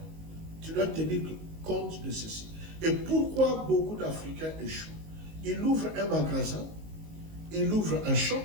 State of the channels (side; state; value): left; late; 19 ms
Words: Tu dois tenir compte de ceci. Et pourquoi beaucoup d'Africains échouent? Ils ouvrent un magasin, ils ouvrent un shop,